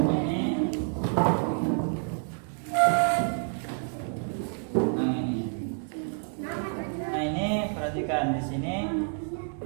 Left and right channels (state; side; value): silent; left; 59 dB below the other